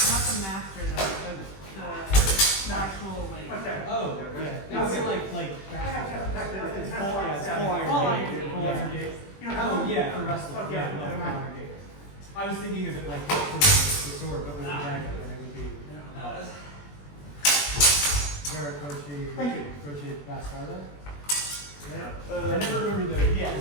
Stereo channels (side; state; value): right; late; 21 ms